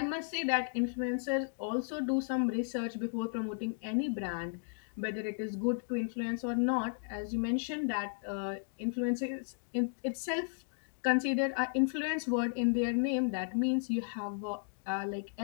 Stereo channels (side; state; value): right; silent; digital silence